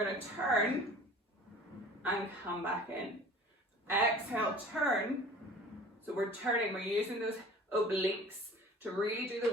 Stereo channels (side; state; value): both; normal; correlation 0.44